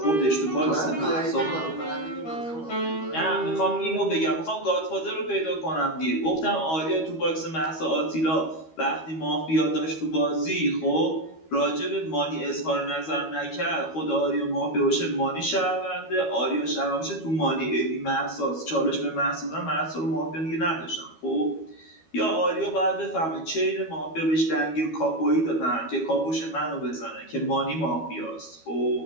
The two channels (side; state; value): right; late; 12 ms